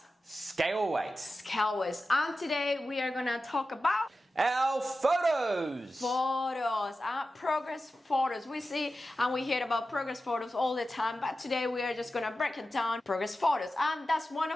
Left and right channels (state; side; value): normal; both; correlation 0.93